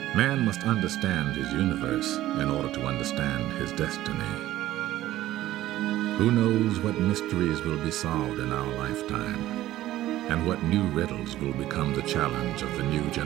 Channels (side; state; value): left; quieter; 14.6 dB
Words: Man must understand his universe in order to understand his destiny. Who knows what mysteries will be solved in our lifetime, and what new riddles will become the challenge of the new